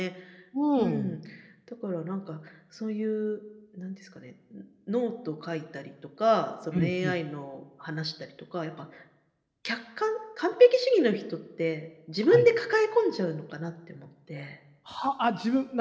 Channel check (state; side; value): identical; both; correlation 1.00